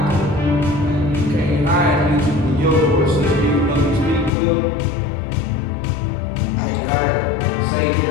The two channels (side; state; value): right; drops out; at 4.3 s